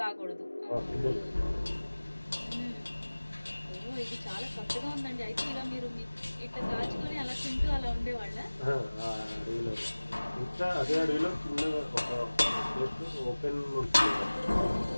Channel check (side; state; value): both; inverted; correlation -1.00